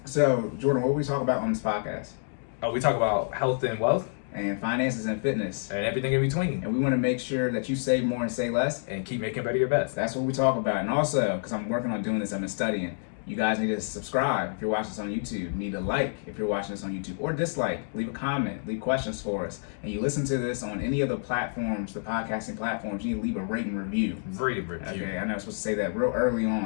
So, Jordan, what we talk about on this podcast? Oh, we talk about health and wealth. And finances and fitness. And everything in between. And we want to make sure that you save more and say less. And keep making better your best. That's what we talk about. And also, because I'm working on doing this, I've been studying. You guys need to subscribe if you're watching this on YouTube. You need to like if you're watching this on YouTube. Or dislike. Leave a comment. Leave questions for us. And you listen to this on any of the platforms, the podcasting platforms, you need to leave a rating review. Rate review. Okay, I know I'm supposed to say that real early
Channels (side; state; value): right; silent; digital silence